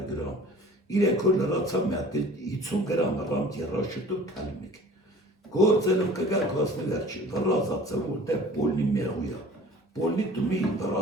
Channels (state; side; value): normal; both; correlation 0.46